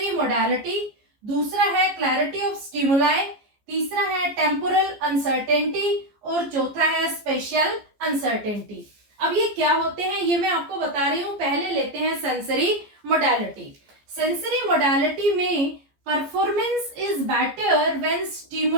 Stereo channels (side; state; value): left; late; 14 ms